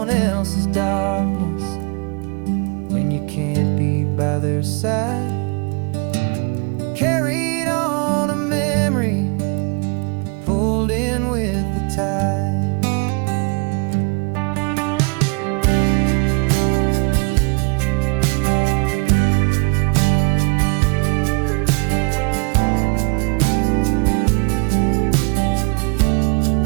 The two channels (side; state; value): left; quieter; 32.1 dB